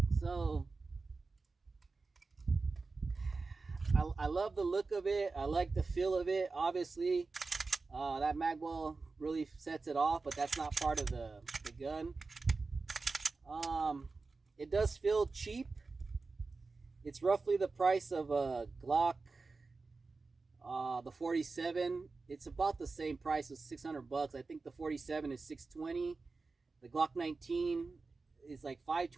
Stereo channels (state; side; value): quieter; left; 4.0 dB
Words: So I love the look of it. I like the feel of it. Obviously, that mag well really sets it off, but that's not part of the gun. It does feel cheap. It's roughly the price of a Glock, the 47. It's about the same price as $600. I think the 47 is $620. The Glock 19 is like